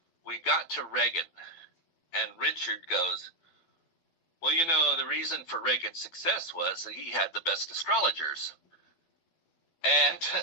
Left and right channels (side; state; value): right; late; 12 ms